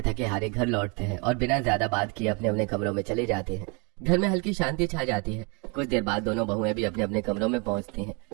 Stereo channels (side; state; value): left; quieter; 32.7 dB